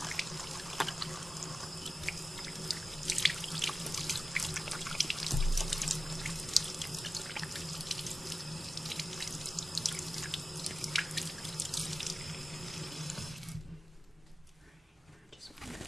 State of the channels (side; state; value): both; normal; correlation 0.95